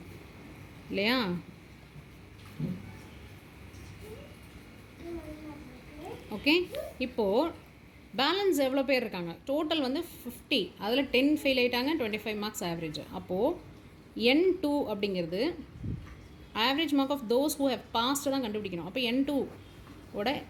இல்லையா. ஓகே, இப்போது பேலன்ஸ் எவ்வளோ பேர் இருக்காங்க, டோட்டல் 50, அதில் 10 ஃபெயில் ஆகிட்டாங்க, 25 மார்க்ஸ் ஆவரேஜ். அப்போது n2 அப்படிங்கிறது average mark of those who have passed தான் கண்டுபிடிக்கணும். அப்போ n2 ஓட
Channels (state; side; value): identical; both; correlation 1.00